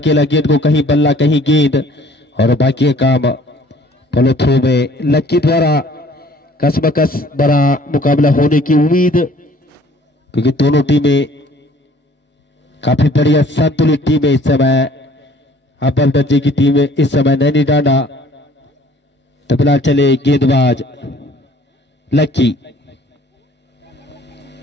गेंद को, कहीं बल्ला कहीं गेंद और बाकी काम फॉलो थ्रू में लक्की द्वारा। कसमकस बड़ा मुकाबला होने की उम्मीद, क्योंकि दोनों टीमें काफी बढ़िया संतुलित टीम है इस समय। अव्वल दर्जे की टीम इस समय नैनी डांडा। तो फिलहाल चले गेंदबाज लक्की,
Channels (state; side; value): normal; both; correlation 0.55